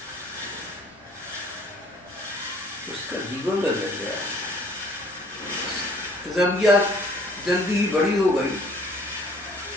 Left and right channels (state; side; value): normal; both; correlation 0.56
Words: उसका जीवन बदल गया। रबिया जल्दी ही बड़ी हो गई,